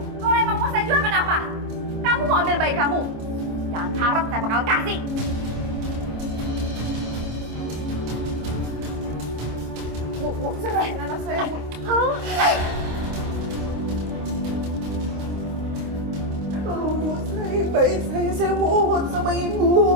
emang mau saya jual kenapa? Kamu mau ambil bayi kamu? Jangan harap saya bakal kasih. Bu, serahin anak saya, Bu. Tolong, Bu, serahin bayi saya mohon sama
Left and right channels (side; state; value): left; late; 26 ms